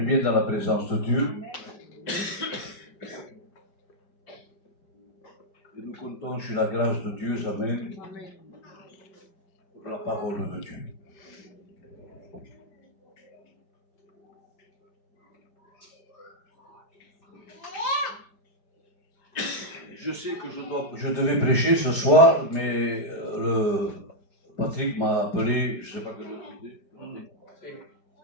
bien dans la présence de Dieu. Et nous comptons sur la grâce de Dieu, amen, pour la parole de Dieu. Je sais que je devais prêcher ce soir, mais Patrick m'a appelé, je ne sais pas quelle heure c'était.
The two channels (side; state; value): right; late; 4.8 ms